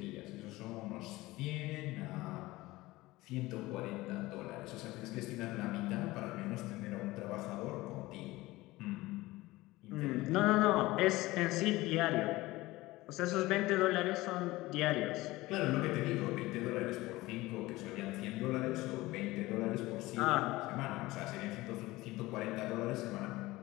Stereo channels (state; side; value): quieter; right; 19.2 dB